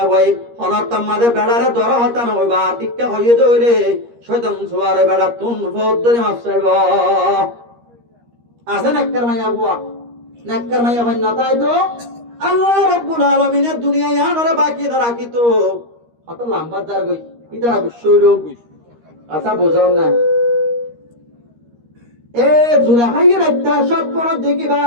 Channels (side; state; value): left; late; 13 ms